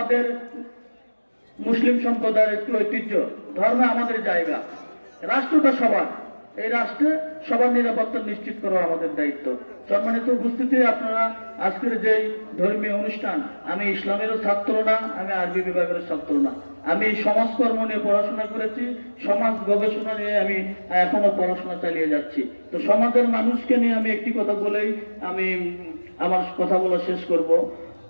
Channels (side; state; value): both; inverted; correlation -1.00